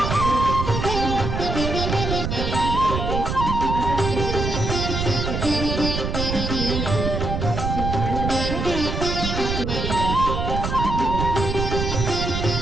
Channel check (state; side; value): noise; right; rumble, 2 dB below the sound